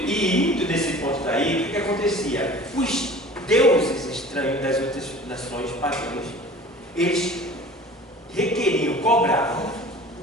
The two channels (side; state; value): both; normal; correlation 0.43